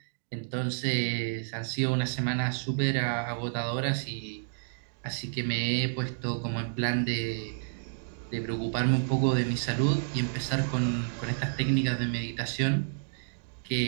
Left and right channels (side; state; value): left; silent; digital silence